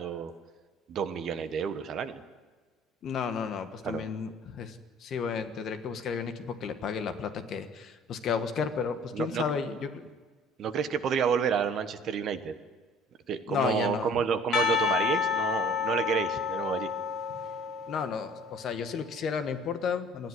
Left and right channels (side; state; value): both; normal; correlation 0.51